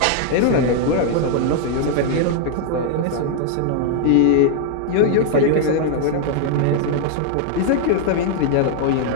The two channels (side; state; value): both; different; correlation 0.00